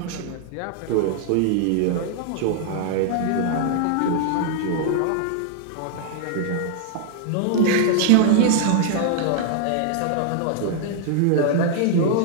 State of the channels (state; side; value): different; both; correlation -0.01